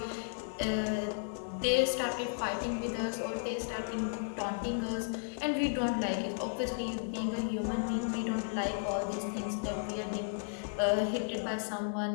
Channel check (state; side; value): silent; right; digital silence